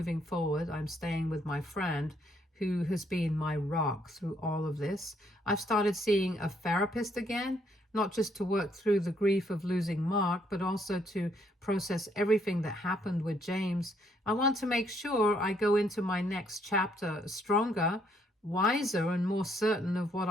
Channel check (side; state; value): both; normal; correlation 0.70